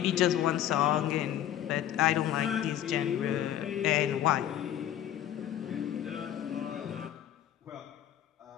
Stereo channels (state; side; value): quieter; right; 11.4 dB